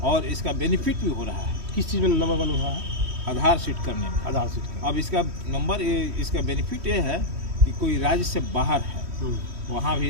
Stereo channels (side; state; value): left; late; 3.1 ms